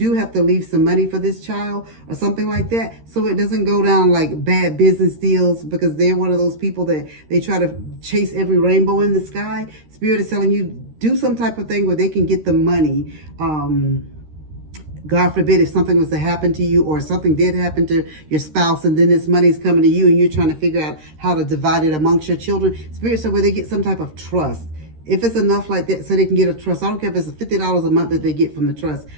have to leave some money for this child or something like that, so it doesn't go down like bad business deals, because they're one of those people that they try to chase every rainbow in the sky. Spirit is telling you, do some type of thing where they can get the money. God forbid if something was to happen to you, or something did happen to your spouse, and then this money's coming to you and you're trying to figure out how to divide it amongst your children. Spirit said where they get some type of trust. If it's enough like that so they can get a trust. I don't care if it's $50 a month that they get from the trust.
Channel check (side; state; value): left; late; 13 ms